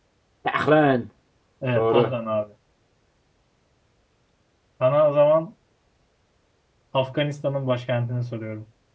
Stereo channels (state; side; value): identical; both; correlation 1.00